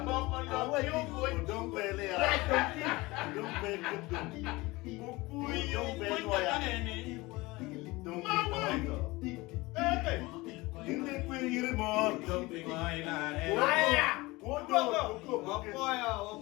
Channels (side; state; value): right; quieter; 21.8 dB